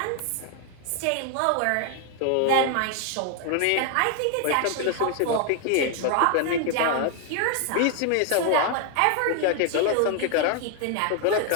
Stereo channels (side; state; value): both; different; correlation 0.00